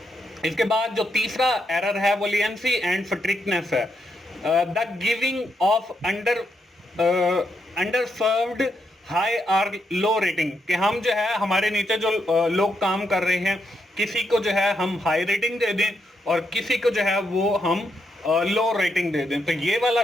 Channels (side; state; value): both; normal; correlation 0.80